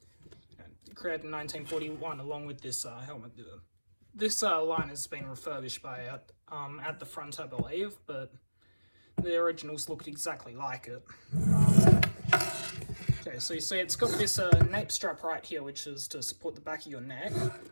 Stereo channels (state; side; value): inverted; both; correlation -1.00